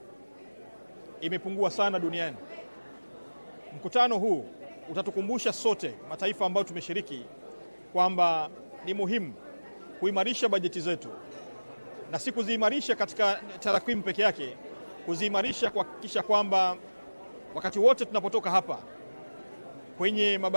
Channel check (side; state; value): both; inverted; correlation -1.00